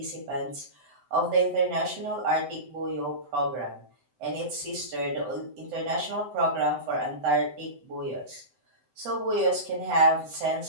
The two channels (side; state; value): left; late; 7.8 ms